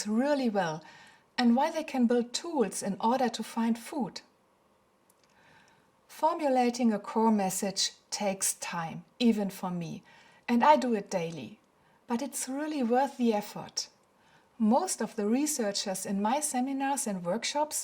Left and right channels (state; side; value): identical; both; correlation 1.00